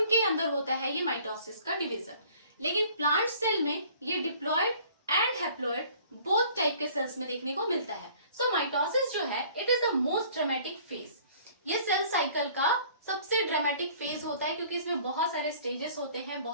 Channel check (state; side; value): inverted; both; correlation -0.53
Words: अंदर होता है ये माइटोसिस का डिवीजन. लेकिन प्लांट सेल में ये diploid and haploid both type के सेल्स में देखने को मिलता है. सो माइटोसिस जो है it is the most dramatic phase. ये सेल साइकिल का सबसे ड्रामेटिक फेज होता है क्योंकि इसमें बहुत सारे स्टेजेस होते हैं,